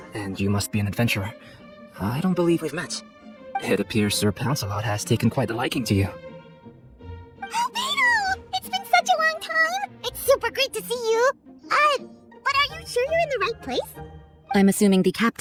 and you must be an adventurer. I don't believe we've met. It appears Sir Lancelot has taken quite a liking to you. Beto! It's been such a long time! It's super great to see you! But are you sure you're in the right place? I'm assuming the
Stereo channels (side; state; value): both; identical; correlation 1.00